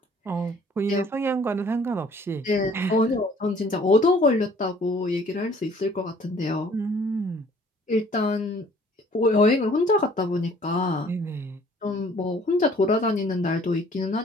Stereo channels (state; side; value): normal; both; correlation 0.56